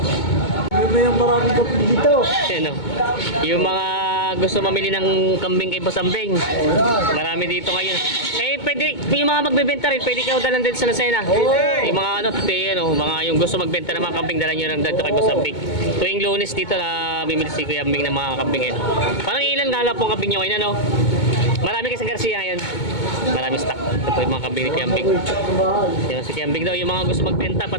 May maraming kapit dito. Ano? Yung mga gusto mamili ng kambing kay Boss Ambing. Marami dito ngayon. Eh, pwede, yung mga magbebenta rin, pwede kayo dalan din sa Lucena. Yung mga mga yung gusto magbenta ng mga kambing, dalan nyo lang dito kay Boss Ambing. Tuwing Lunes dito na bimili si Kuya Ambing ng mga kambing ngayon. Parang ilan nga lang pong kambing nyo ngayon, ano? Marami kasi sa Garcia ngayon. Marami stock. Ito po yung mga kambing ni Kuya Ambing. Yung si Kuya Ambing daw, yung mga gusto magbenta,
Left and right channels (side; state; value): right; late; 2.2 ms